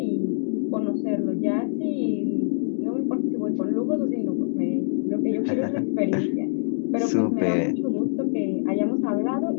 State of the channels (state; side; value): silent; right; 62 dB below the other